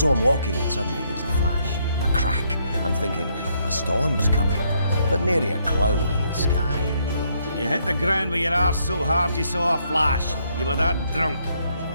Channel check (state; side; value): inverted; both; correlation -0.72